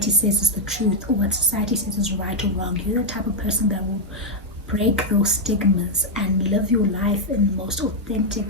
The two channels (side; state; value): both; normal; correlation 0.00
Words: says is the truth, or what society says is right or wrong. You're the type of person that will break those stigmas and live your life in the most